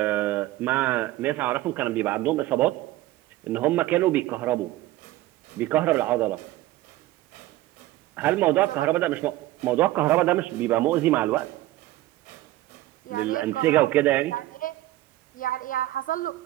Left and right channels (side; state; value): left; quieter; 16.4 dB